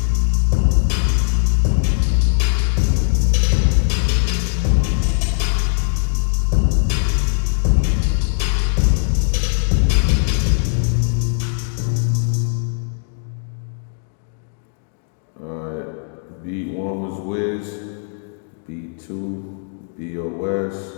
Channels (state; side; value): silent; right; digital silence